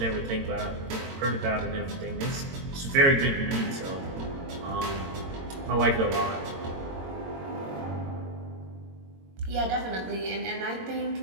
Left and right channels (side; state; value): left; late; 22 ms